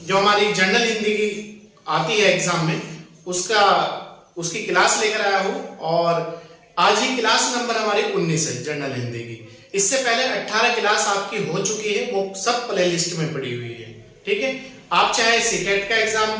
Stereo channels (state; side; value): identical; both; correlation 1.00